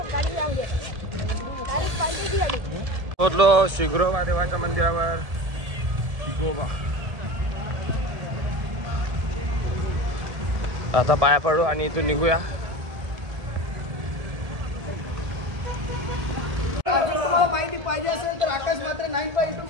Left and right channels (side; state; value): left; late; 1.7 ms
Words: पोहोचलो शिग्रोबा देवाच्या मंदिरावर. गोबा आता पाया पडू आणि इथून निघूया. तुम्हाला माहिती पाहिजे असेल तर आकाश मात्र 9.2